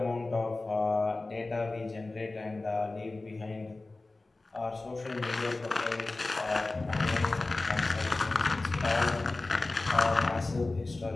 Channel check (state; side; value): quieter; right; 3.2 dB